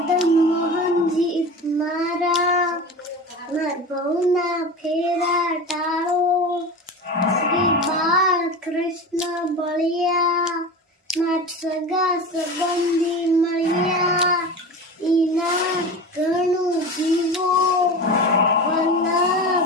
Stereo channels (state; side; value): normal; both; correlation 0.30